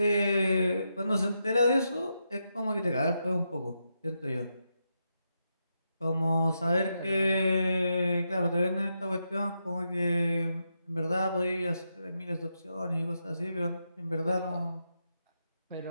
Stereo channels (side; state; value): both; inverted; correlation -0.84